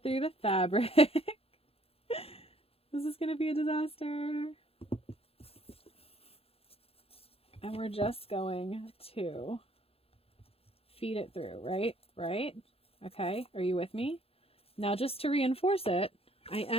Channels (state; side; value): late; right; 0.28 ms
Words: through the fabric. This is going to be a disaster. And we're just going to feed it through, right? Right? Okay. Are you with me? Now, just to reinforce it, I